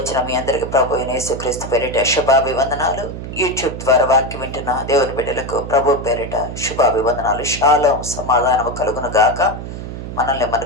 మీ అందరికీ ప్రభు యేసుక్రీస్తు పేరిట శుభాభివందనాలు. యూట్యూబ్ ద్వారా వాక్యం వింటున్న దేవుని బిడ్డలకు ప్రభు పేరిట శుభాభివందనాలు. షాలోం, సమాధానము కలుగును గాక. మనల్ని మన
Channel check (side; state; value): right; noise; hum, 8 dB below the sound